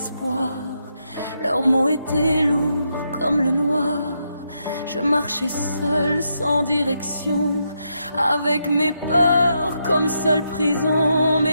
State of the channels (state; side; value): inverted; both; correlation -0.81